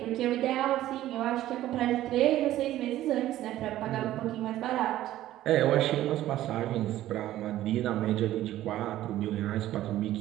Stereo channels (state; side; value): quieter; left; 14.0 dB